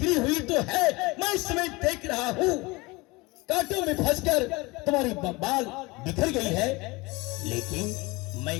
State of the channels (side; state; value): right; quieter; 23.8 dB